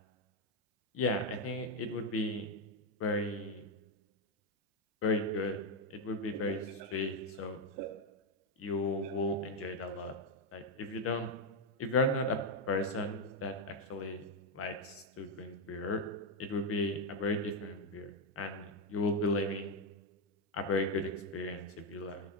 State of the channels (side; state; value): both; normal; correlation 0.04